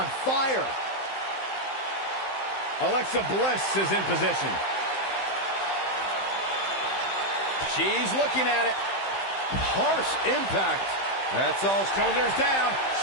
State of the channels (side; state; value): right; late; 15 ms